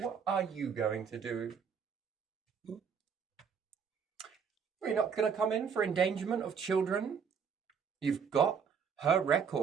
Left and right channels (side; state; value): left; quieter; 6.7 dB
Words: are you going to do? You're not going to come in for endangerment of children? You've got her